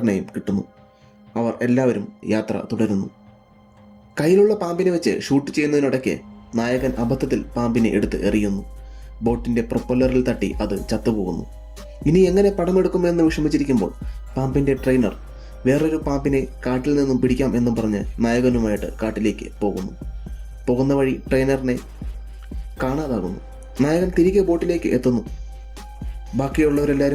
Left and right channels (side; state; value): both; identical; correlation 1.00